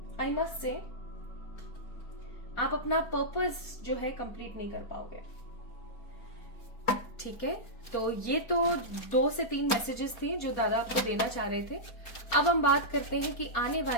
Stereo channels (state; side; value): late; right; 4.4 ms